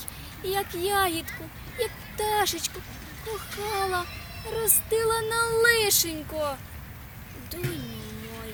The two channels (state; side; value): identical; both; correlation 1.00